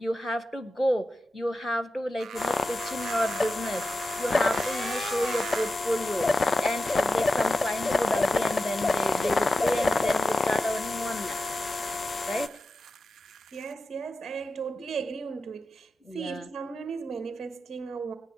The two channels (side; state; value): both; normal; correlation 0.91